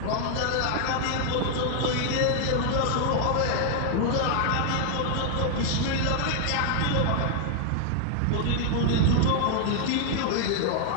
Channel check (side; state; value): both; different; correlation 0.00